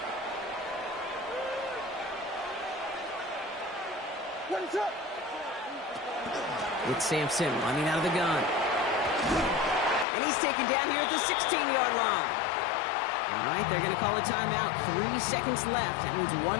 It's Sampson running out of the gun. And he's taken down here at the 16-yard line. All right, they're going to call a timeout. 3 seconds left. That means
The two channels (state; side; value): drops out; right; at 10.1 s